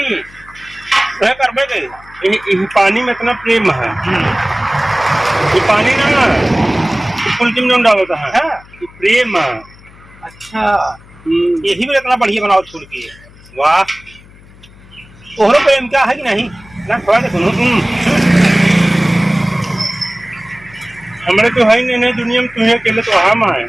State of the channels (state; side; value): noise; left; hum, 24 dB below the sound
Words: करबे गए। पानी में इतना प्रेम है। ये पानी ना फुल्की में डालता है। हाँ? ये प्रेम है। अच्छा यही भी इतना बढ़िया बनाओ फुल्की है। वाह ओहरो प्रेम क्या है कि नहीं ना थोड़ा सा सुनो। हमारे तो है नहीं दुनिया में, तुम्हें अकेले तो हम आए